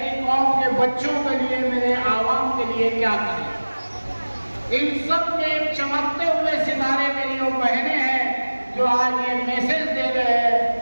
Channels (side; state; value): both; inverted; correlation -1.00